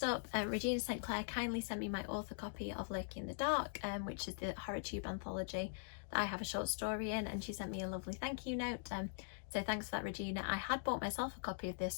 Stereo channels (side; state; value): right; silent; digital silence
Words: up, Regina St. Clair kindly sent me my author copy of Lurking in the Dark, which is the HorrorTube anthology that I have a short story in, and she sent me a lovely thank you note. So thanks for that, Regina. I had bought myself a copy of this,